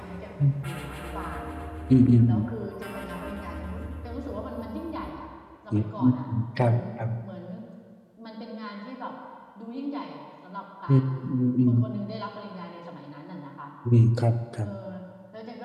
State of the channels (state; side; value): identical; both; correlation 1.00